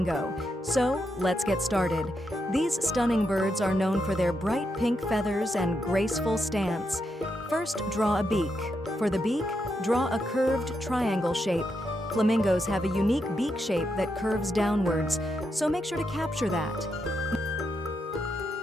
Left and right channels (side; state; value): both; normal; correlation 0.83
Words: so let's get started. These stunning birds are known for their bright pink feathers and graceful stance. First, draw a beak. For the beak, draw a curved triangle shape. Flamingos have a unique beak shape that curves downwards, so make sure to capture that.